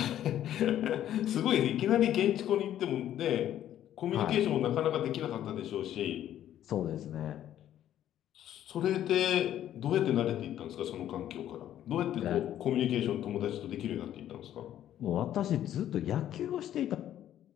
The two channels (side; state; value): right; quieter; 11.5 dB